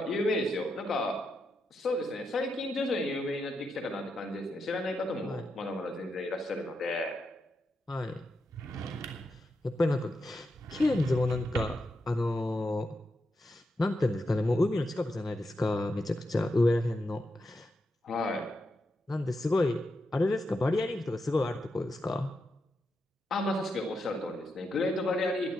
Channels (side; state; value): both; normal; correlation 0.85